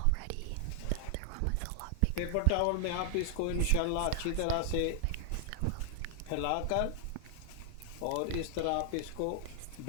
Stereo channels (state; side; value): different; both; correlation 0.00